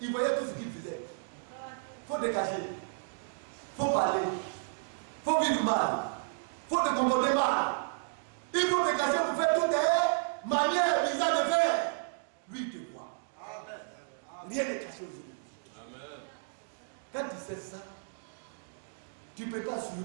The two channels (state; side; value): silent; left; digital silence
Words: Il voyait tout ce qu'il faisait. Il faut te cacher. Il faut parler. Il faut vivre mal. Il faut te comporter mal. Il faut te cacher pour faire toutes tes manières bizarres de faire. Lui, il te voit. Rien n'est caché aujourd'hui. Quand tu sais ça, tu ne peux pas